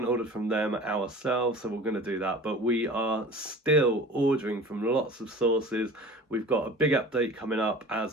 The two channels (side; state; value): both; normal; correlation 0.40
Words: ordered from them ourselves, so we're going to do that. But we are still ordering from lots of sources. We've got a big update coming up,